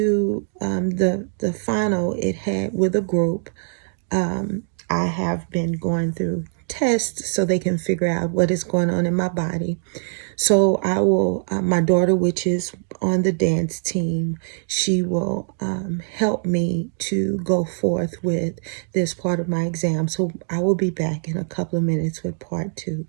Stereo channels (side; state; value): left; silent; digital silence